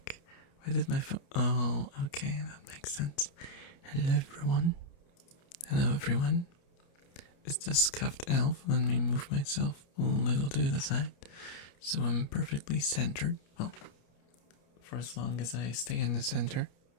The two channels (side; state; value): right; late; 29 ms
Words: Why did my phone... Oh, okay, that makes sense. Hello everyone. Hello everyone. It's the scuffed elf. Let me move myself a little to the side so I'm perfectly centered. Well, for as long as I stay in the center,